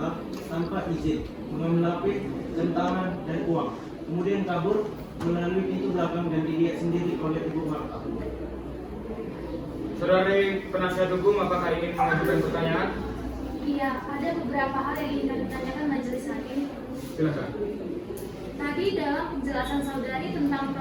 tanpa izin, mengambil HP, jam tangan, dan uang. Kemudian kabur melalui pintu belakang dan dilihat sendiri oleh Ibu Marta. Saudari penasihat hukum, apakah ingin mengajukan pertanyaan? Iya, ada beberapa hal yang ingin kami tanyakan majelis hakim. Silakan. Tadi dalam penjelasan saudari tentang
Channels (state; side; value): identical; both; correlation 1.00